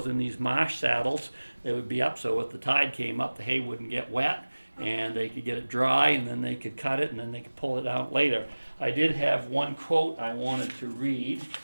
in these marsh saddles. They would be up so if the tide came up, the hay wouldn't get wet, and they could get it dry, and then they could cut it, and then they could pull it out later. I did have one quote I wanted to read. It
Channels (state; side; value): inverted; both; correlation -1.00